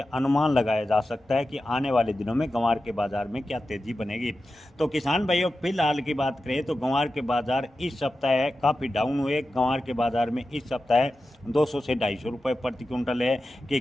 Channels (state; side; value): normal; both; correlation 0.92